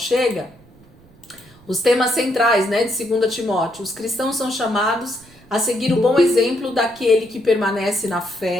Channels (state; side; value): noise; right; rumble, 27 dB below the sound